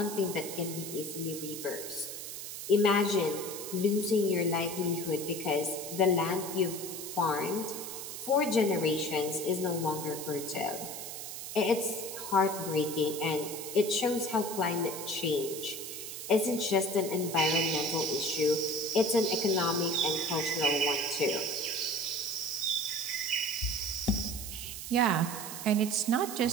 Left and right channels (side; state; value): right; noise; hiss, 8 dB below the sound